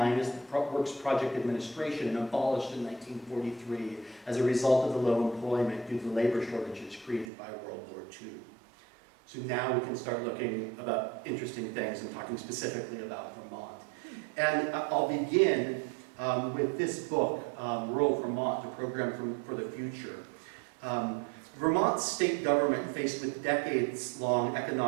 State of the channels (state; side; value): drops out; left; at 7.2 s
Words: as the Works Project Administration and abolished in 1943 as a result of the low employment due to labor shortages created by World War II. So now we can start looking about interesting things and talking specifically about Vermont. And I'll begin with this book, Rural Vermont, a program for the future. Vermont's state government, faced with a decades-long